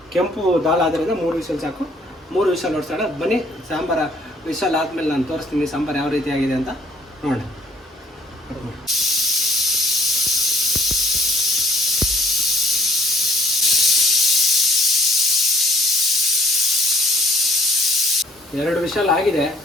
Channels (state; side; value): normal; both; correlation 0.59